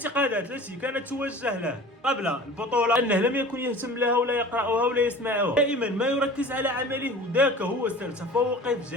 التي كانت توجه له قبل البطوله انه لم يكن يهتم لها ولا يقراها ولا يسمعها، دائما ما يركز على عمله، وذاك هو سر تفوقه في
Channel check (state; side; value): normal; both; correlation 0.41